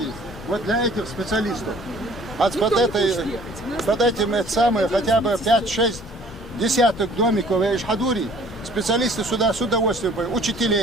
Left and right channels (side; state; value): both; normal; correlation 0.54